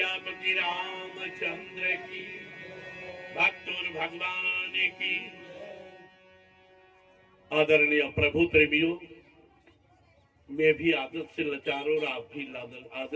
रामचंद्र की, भक्तों भगवान की। आदरणीय प्रभु प्रेमियों, मैं भी आदत से लाचार और आप भी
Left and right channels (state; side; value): identical; both; correlation 1.00